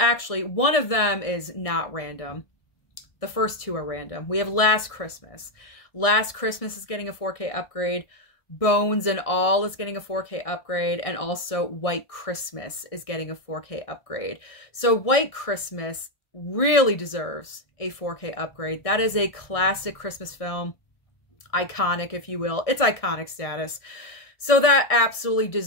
one of them is not random. The first 2 are random. We have Last Christmas. Last Christmas is getting a 4K upgrade. Bones and All is getting a 4K upgrade. And also White Christmas is getting a 4K upgrade. So White Christmas really deserves a 4K upgrade. That is a classic Christmas film. Iconic, if you will. It's iconic status. So that absolutely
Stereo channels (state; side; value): late; right; 1.6 ms